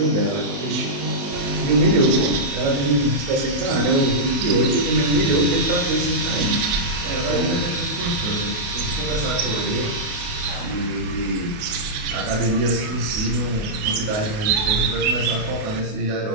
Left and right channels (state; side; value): late; left; 28 ms